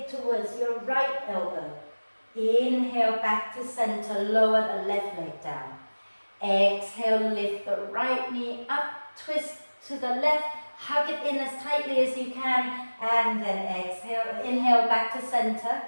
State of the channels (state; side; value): inverted; both; correlation -1.00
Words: towards your right elbow. Inhale, back to center, lower the left leg down. Exhale, lift the right knee up, twist to the left, hug it in as tightly as you can, and then exhale, inhale, back to center.